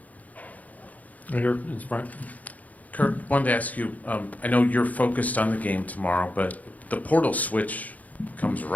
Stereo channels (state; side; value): late; right; 0.076 ms